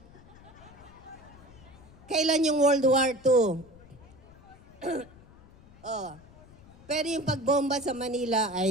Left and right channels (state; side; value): noise; left; rumble, 23 dB below the sound